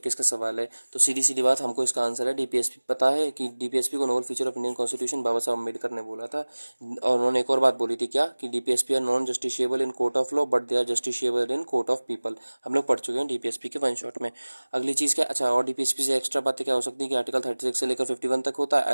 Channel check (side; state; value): both; inverted; correlation -1.00